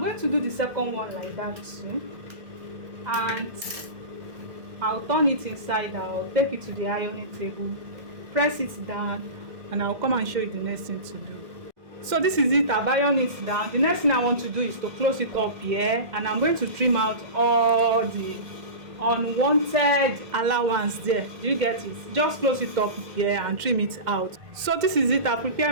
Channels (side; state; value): left; late; 1.6 ms